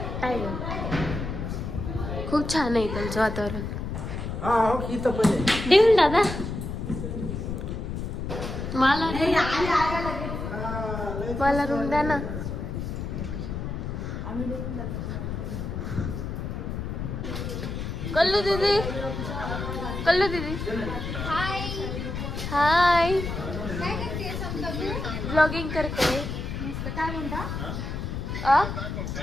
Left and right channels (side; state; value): left; noise; rumble, 4 dB below the sound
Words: टायगर. खूप छान आहे त्यांचं वातावरण. देऊन दादा मला रूम द्या ना. कल्लू दीदी हाय. हाय. काय करते समजा तू? ब्लॉगिंग करते. मस्त. काय म्हणता?